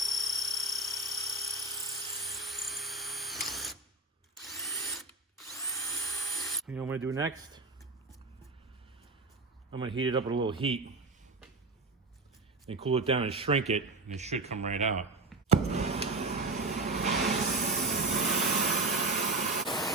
You know what I'm going to do next? I'm gonna heat it up with a little heat, then cool it down and shrink it, and it should come right out.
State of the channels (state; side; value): quieter; left; 3.2 dB